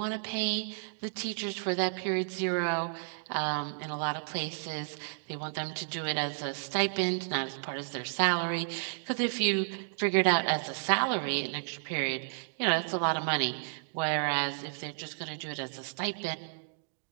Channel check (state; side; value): silent; left; digital silence